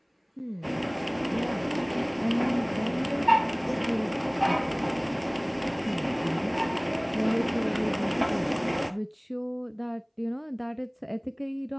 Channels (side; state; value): both; identical; correlation 1.00